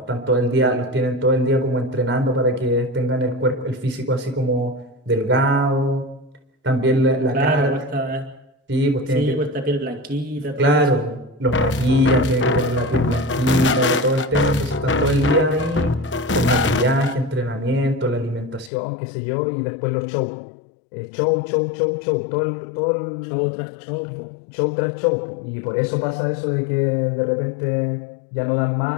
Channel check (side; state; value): right; drops out; at 18.7 s